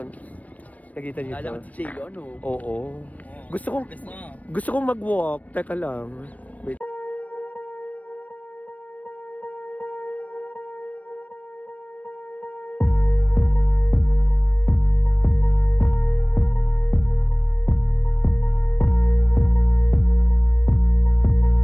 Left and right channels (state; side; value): late; right; 0.070 ms